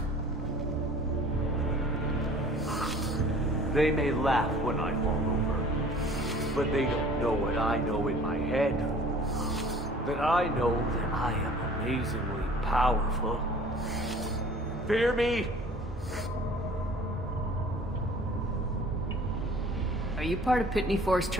They may laugh when I fall over, but they don't know what I know in my head. That I know that I am amazingly powerful. Fear me? Are you part of Pitney 4's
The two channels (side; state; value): both; normal; correlation 0.48